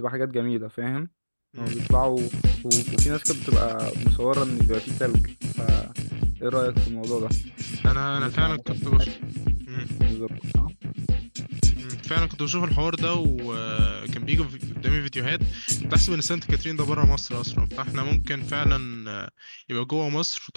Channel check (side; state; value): both; inverted; correlation -1.00